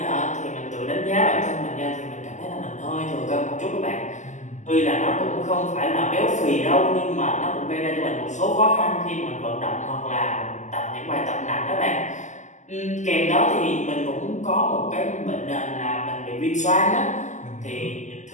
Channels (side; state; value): right; late; 0.34 ms